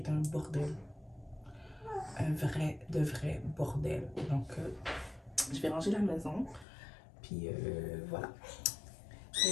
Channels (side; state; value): right; drops out; at 6.7 s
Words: un bordel. Un vrai bordel. Donc, je vais ranger la maison. Puis voilà.